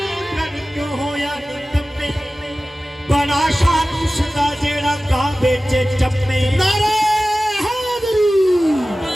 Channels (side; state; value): both; normal; correlation 0.96